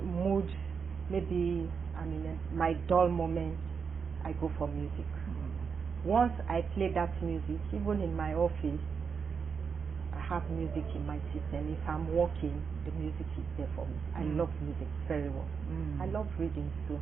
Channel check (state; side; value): quieter; left; 6.0 dB